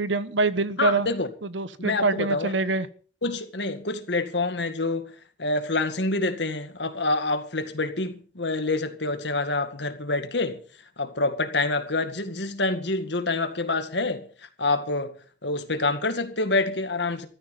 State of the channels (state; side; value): normal; both; correlation -0.15